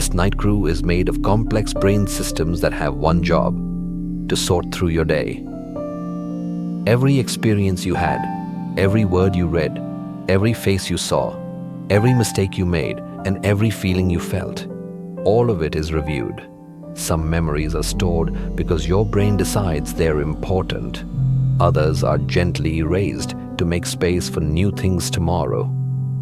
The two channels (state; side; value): identical; both; correlation 1.00